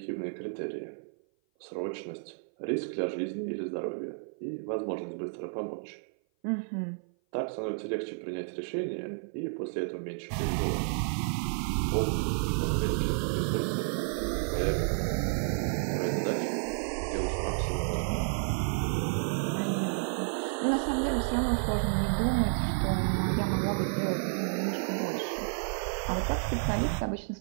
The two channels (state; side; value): silent; left; 56 dB below the other